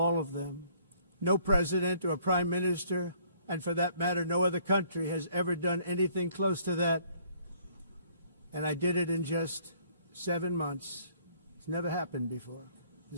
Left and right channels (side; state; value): both; inverted; correlation -0.61